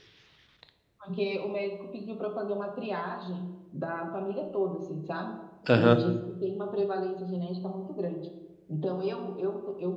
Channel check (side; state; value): both; identical; correlation 1.00